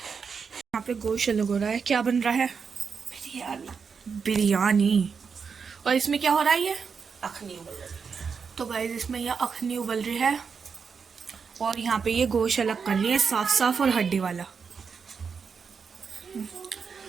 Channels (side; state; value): left; quieter; 5.9 dB